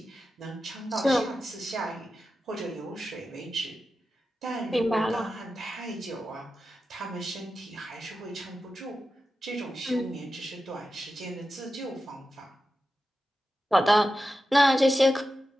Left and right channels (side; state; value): both; normal; correlation 0.91